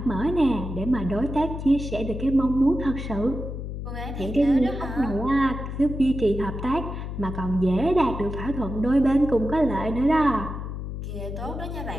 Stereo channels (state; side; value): noise; left; hum, 6 dB below the sound